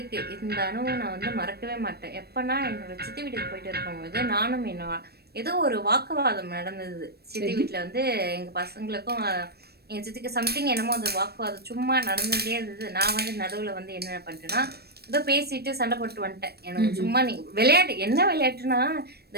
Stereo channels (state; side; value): late; left; 0.47 ms